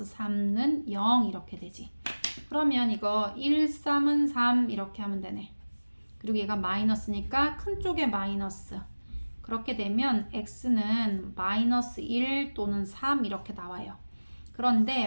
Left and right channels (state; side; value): inverted; both; correlation -1.00